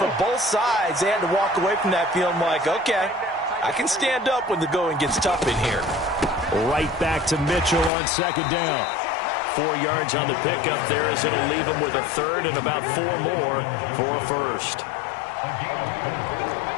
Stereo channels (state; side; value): drops out; right; at 7.9 s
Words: both sides, they had to walk away from that feeling like, okay, I can stand up when the going gets tough in here. Right back to Mitchell on 2nd down. 4 yards on the pickup there as it'll leave him with a 3rd and about 4 more for a 1st.